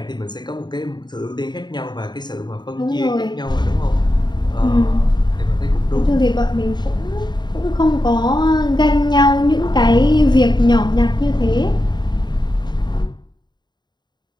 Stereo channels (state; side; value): late; right; 0.21 ms